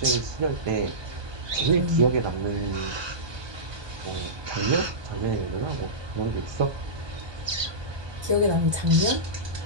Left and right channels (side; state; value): left; late; 1.2 ms